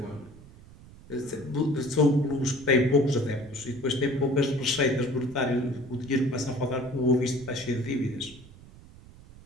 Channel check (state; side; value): noise; right; rumble, 21 dB below the sound